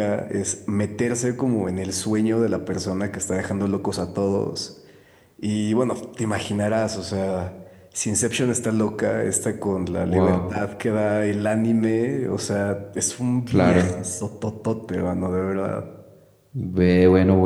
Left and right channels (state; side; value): identical; both; correlation 1.00